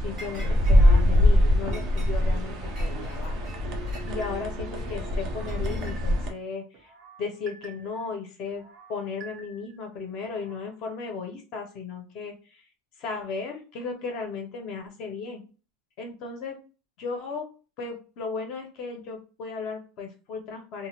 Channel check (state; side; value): normal; both; correlation 0.75